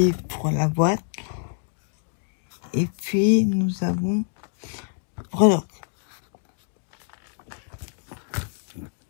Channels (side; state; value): right; silent; digital silence